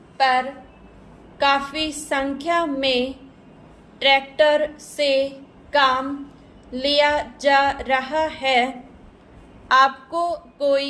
पर काफ़ी संख्या में ट्रैक्टर से काम लिया जा रहा है, आपको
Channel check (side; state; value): both; identical; correlation 1.00